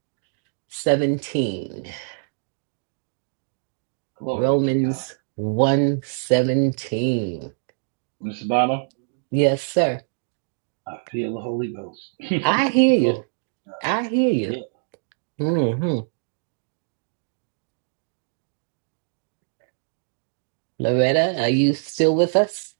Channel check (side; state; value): left; silent; digital silence